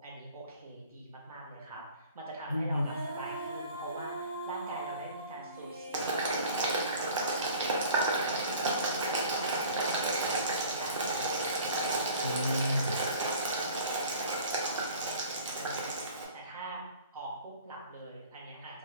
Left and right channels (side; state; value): both; inverted; correlation -0.46